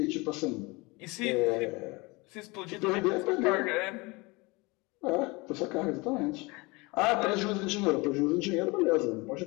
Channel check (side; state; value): right; quieter; 25.2 dB